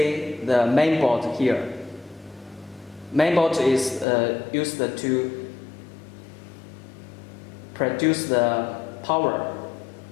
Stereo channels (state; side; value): drops out; right; at 4.0 s